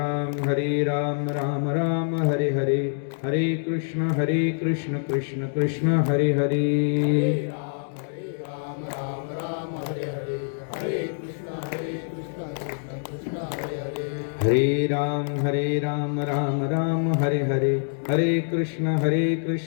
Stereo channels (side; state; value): right; silent; digital silence